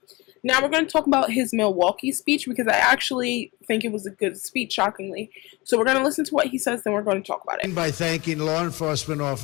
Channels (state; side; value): quieter; right; 23.8 dB